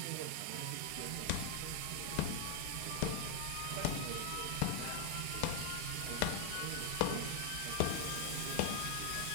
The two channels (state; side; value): different; both; correlation 0.00